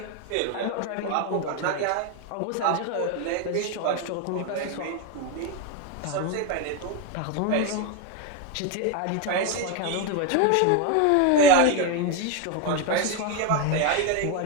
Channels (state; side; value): different; both; correlation 0.02